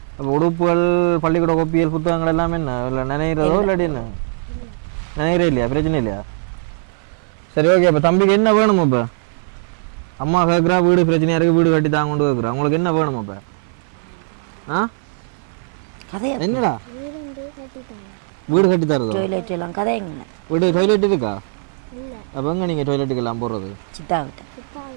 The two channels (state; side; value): silent; left; 57 dB below the other